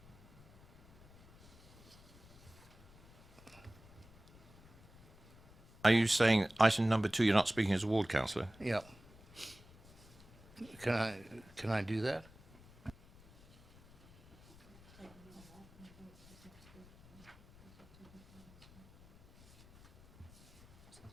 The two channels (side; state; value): left; noise; rumble, 23 dB below the sound